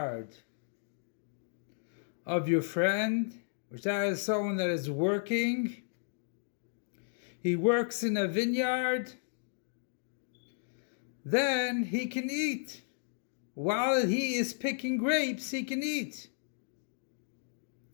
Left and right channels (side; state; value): right; silent; digital silence